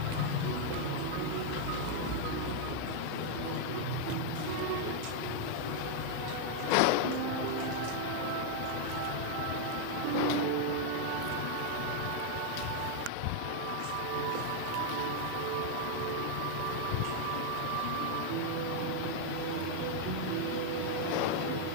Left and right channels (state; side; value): different; both; correlation 0.00